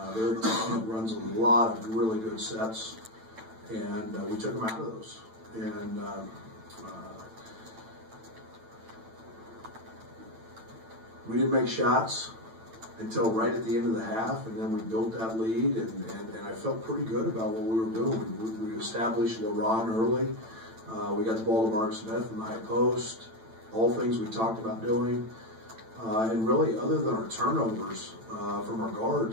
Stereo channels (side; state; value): left; late; 9.0 ms